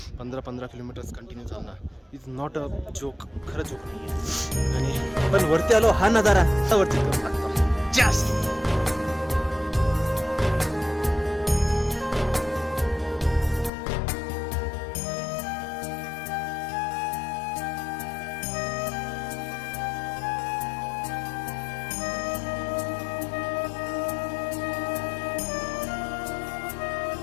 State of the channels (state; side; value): drops out; right; at 13.7 s